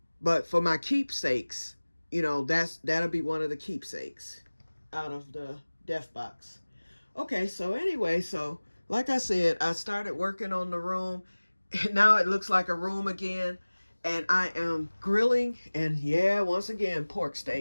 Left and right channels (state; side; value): inverted; both; correlation -1.00